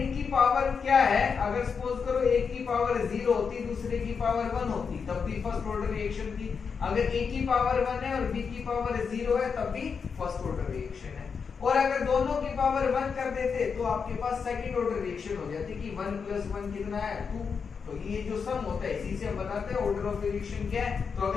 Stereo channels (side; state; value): right; quieter; 5.9 dB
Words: पावर क्या है, अगर सपोज करो एक की पावर 0 होती, दूसरे की पावर 1 होती, तब भी फर्स्ट ऑर्डर रिएक्शन थी। अगर A की पावर 1 है और B की पावर 0 है तब भी फर्स्ट ऑर्डर रिएक्शन है। और अगर दोनों की पावर 1 कर देते तो आपके पास सेकंड ऑर्डर रिएक्शन हो जाती कि 1 + 1 कितना है, 2। तो ये जो सम होता है इसी से हम बताते हैं ऑर्डर ऑफ रिएक्शन क्या है। तो